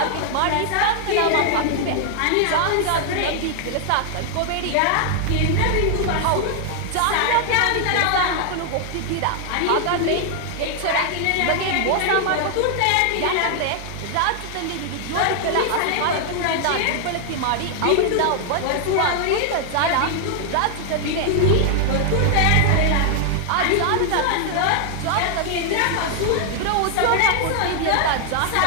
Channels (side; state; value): both; different; correlation 0.00